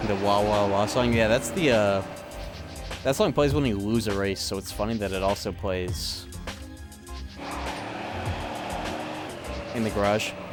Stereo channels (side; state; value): both; identical; correlation 1.00